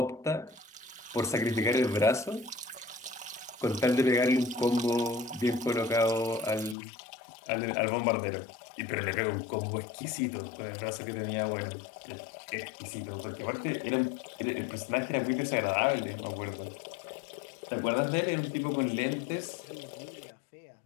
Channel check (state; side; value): drops out; right; at 6.8 s